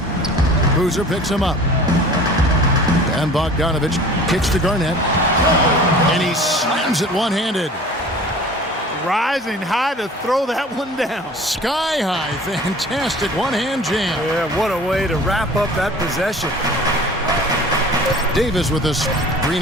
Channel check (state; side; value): normal; both; correlation 0.44